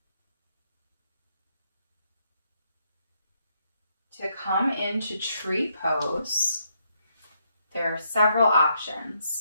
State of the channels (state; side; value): inverted; both; correlation -0.76